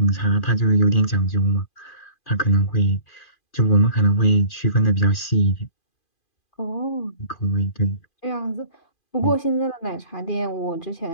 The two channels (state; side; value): late; right; 2.4 ms